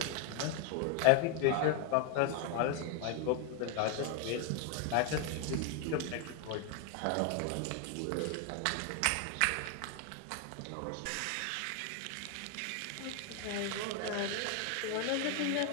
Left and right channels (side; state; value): both; different; correlation 0.01